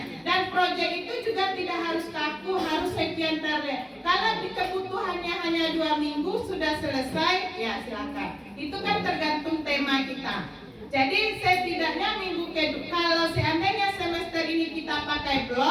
Dan proyek itu juga tidak harus kaku, harus sekian terlihat. Kalau kebutuhannya hanya 2 minggu sudah selesai, ya silakan. Itu kan tergantung tema kita. Jadi setidaknya minggu kedua, kalau seandainya semester ini kita pakai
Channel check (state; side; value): identical; both; correlation 1.00